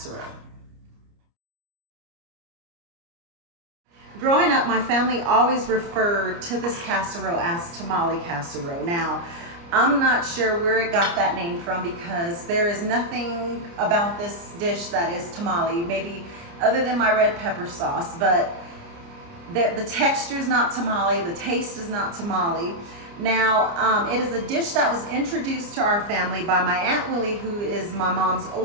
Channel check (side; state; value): left; late; 29 ms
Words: Growing up, my family always referred to this casserole as tamale casserole. Now, I'm not sure where it got that name from because there is nothing about this dish that is tamale, maybe other than my red pepper sauce, but the texture is not tamale, the taste is not tamale. Now, it is a dish that was introduced to our family by my Aunt Willie, who is my mom's